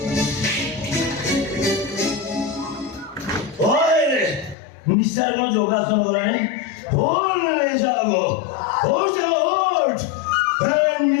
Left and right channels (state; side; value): drops out; right; at 4.5 s